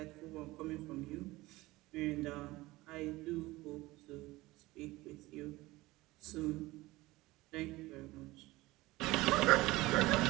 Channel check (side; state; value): left; quieter; 19.6 dB